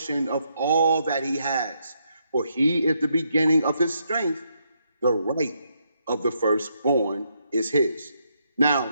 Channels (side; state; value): both; inverted; correlation -0.77